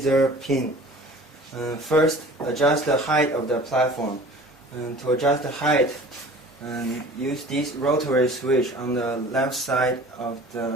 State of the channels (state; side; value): normal; both; correlation 0.44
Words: pin. First, adjust the height of the platform. To adjust the height, use this rotary switch on the left side of